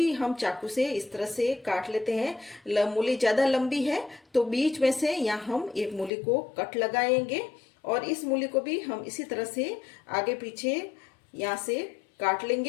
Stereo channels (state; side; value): drops out; right; at 6.1 s